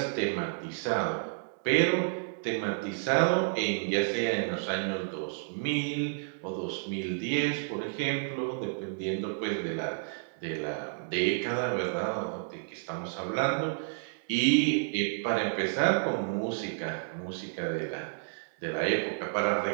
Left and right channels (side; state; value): left; silent; digital silence